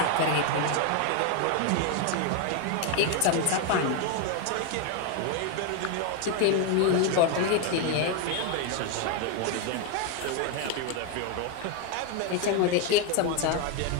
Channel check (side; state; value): both; different; correlation 0.01